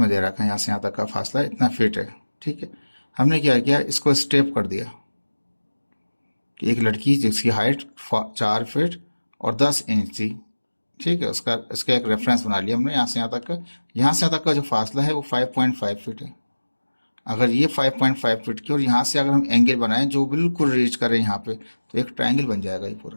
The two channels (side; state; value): both; inverted; correlation -1.00